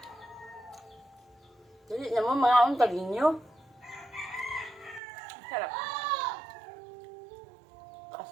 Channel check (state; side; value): drops out; left; at 5.0 s